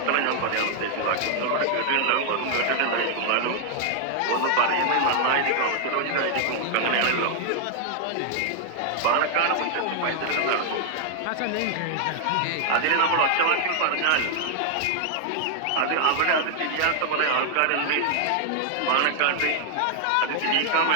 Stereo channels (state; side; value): different; both; correlation 0.00